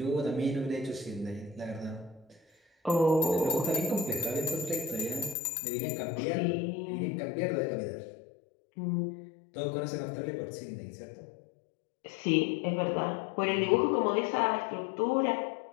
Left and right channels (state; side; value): drops out; right; at 5.4 s